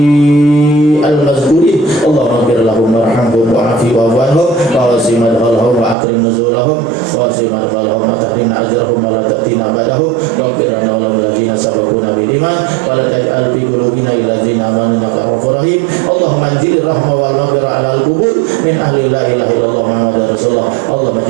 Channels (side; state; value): left; drops out; at 6.0 s